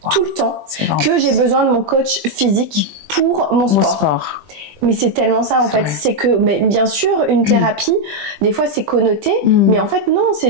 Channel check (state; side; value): late; left; 20 ms